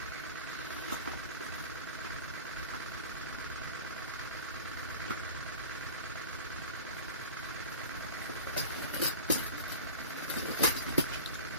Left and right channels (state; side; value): inverted; both; correlation -0.38